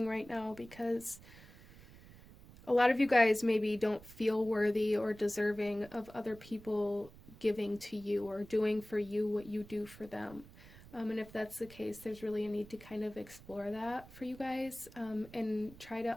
right now, because a lot of you guys maybe don't feel worthy or deserving of other people giving to you or doing for you what you do for them. And if that's the case, there's really a need to kind of explore that for you guys, and try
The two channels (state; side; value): noise; right; rumble, 20 dB below the sound